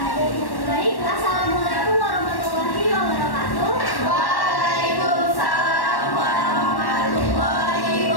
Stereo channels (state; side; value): late; right; 1.1 ms